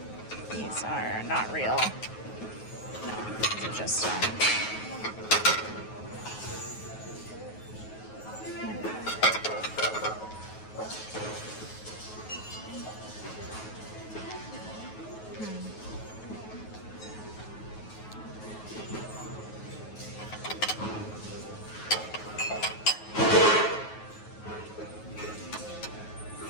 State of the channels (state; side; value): late; right; 9.3 ms